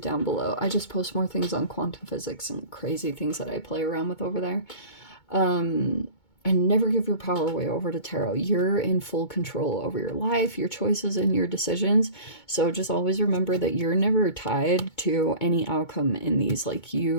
down below. I just post more things on quantum physics and crazy things that I play around with over there. And never give your power away over to tarot. You're in full control over your life, your choices, and your decisions. So just always remember that you're never tied to any outcome in these. Like,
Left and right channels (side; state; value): right; late; 2.2 ms